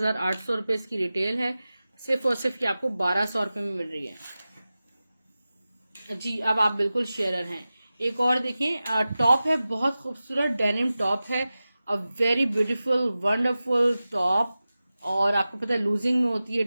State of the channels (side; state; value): both; inverted; correlation -0.95